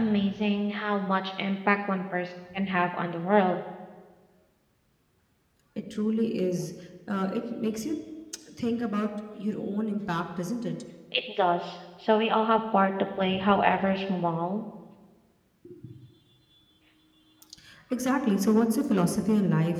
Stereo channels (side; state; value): both; identical; correlation 1.00